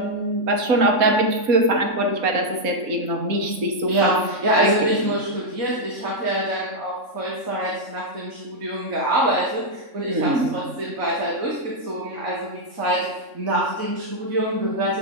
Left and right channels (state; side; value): late; left; 3.6 ms